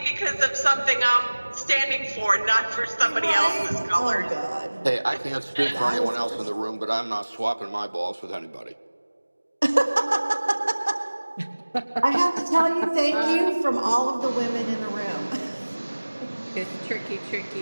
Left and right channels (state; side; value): inverted; both; correlation -1.00